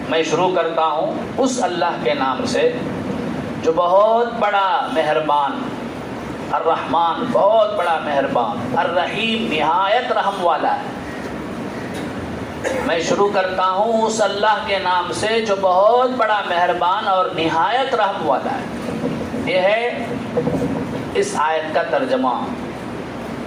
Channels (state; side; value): identical; both; correlation 1.00